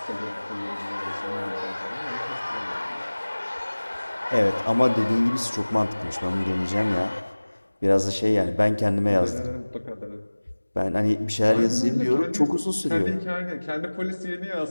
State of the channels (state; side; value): inverted; both; correlation -1.00